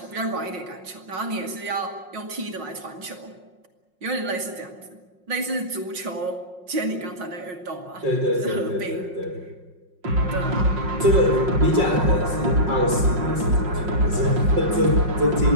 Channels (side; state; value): left; late; 5.5 ms